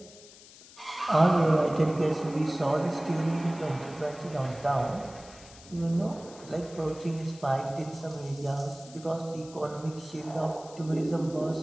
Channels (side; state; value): left; noise; hiss, 20 dB below the sound